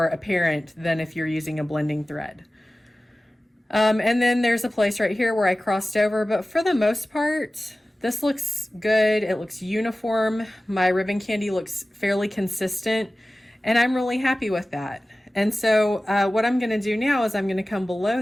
apparent than if you're using a blending thread. And then there's a place right here where I crossed over, but for the most part, this looks good. It looks uniform. My ribbon candy looks fairly consistent, and I'm really happy with that. And so what I'm going to do now is I'm going to come below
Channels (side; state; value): both; normal; correlation 0.96